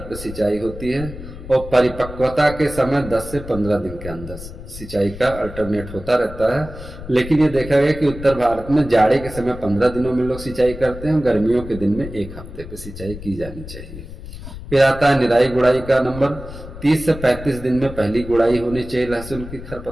सिंचाई होती है और परिपक्वता के समय 10 से 15 दिन के अंदर सिंचाई का अल्टरनेट होता रहता है। लेकिन ये देखा गया कि उत्तर भारत में जाड़े के समय 15 दिनों में लोग सिंचाई करते हैं, गर्मियों के दिन में 1 हफ्ते पे सिंचाई की जानी चाहिए। फिर आता है निराई गुड़ाई का नंबर। 30 से 35 दिन में पहली गुड़ाई होनी चाहिए लहसुन की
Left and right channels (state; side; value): noise; left; rumble, 12 dB below the sound